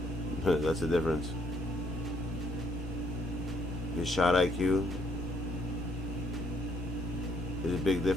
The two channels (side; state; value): both; normal; correlation 0.70